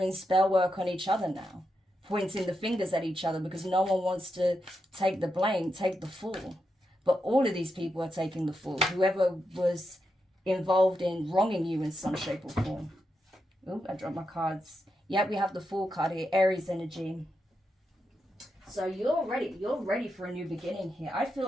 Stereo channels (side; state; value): both; normal; correlation 0.85